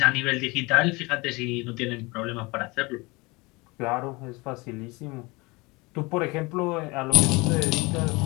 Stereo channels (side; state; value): right; quieter; 24.8 dB